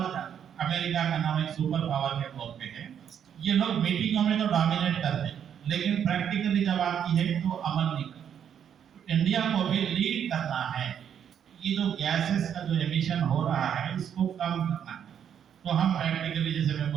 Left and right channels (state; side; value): quieter; left; 8.7 dB